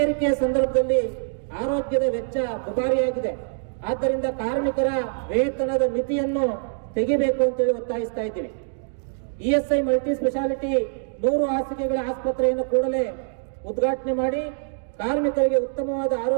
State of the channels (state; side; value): silent; left; digital silence